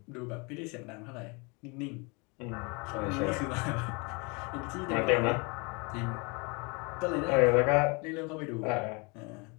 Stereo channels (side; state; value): right; quieter; 30.1 dB